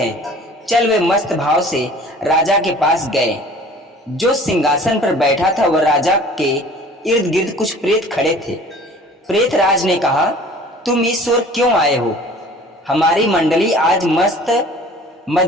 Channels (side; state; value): both; normal; correlation 0.47